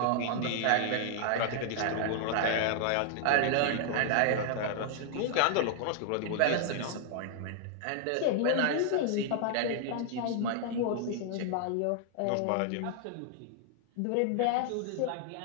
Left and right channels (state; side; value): different; both; correlation -0.01